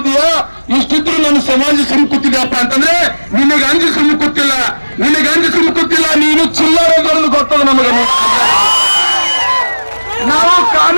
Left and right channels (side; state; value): both; inverted; correlation -1.00